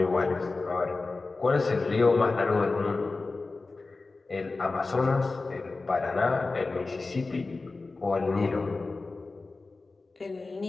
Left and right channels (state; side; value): quieter; right; 3.7 dB